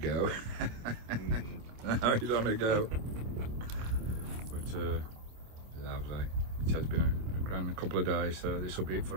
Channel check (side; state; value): left; late; 27 ms